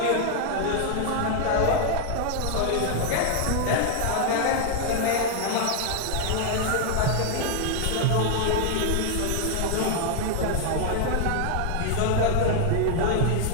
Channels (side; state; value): both; different; correlation 0.00